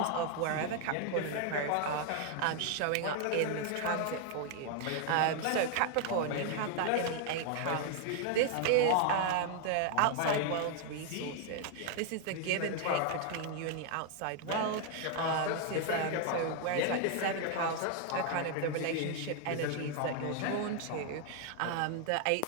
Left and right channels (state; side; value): different; both; correlation 0.00